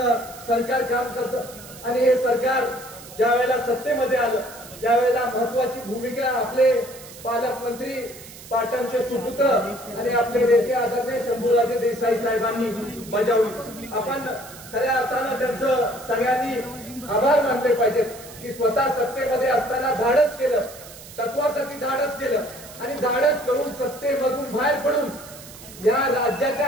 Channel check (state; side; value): noise; right; hiss, 17 dB below the sound